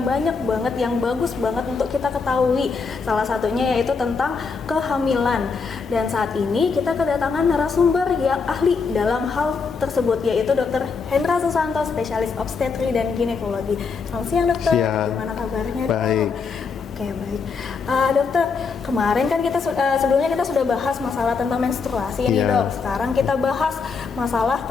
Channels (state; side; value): quieter; right; 5.1 dB